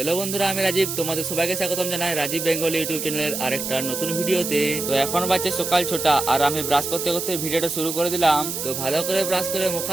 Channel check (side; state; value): right; noise; hiss, 4 dB below the sound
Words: বন্ধুরা, আমি রাজীব। তোমাদের সবাইকে স্বাগতম জানাই রাজীব বেঙ্গলি ইউটিউব চ্যানেলের আরেকটা নতুন ভিডিওতে। তো এখন বাজে সকাল 6টা আর আমি ব্রাশ করতে করতে ভিডিওটা শুরু করে দিলাম। তো ভালো করে ব্রাশ করে মুখ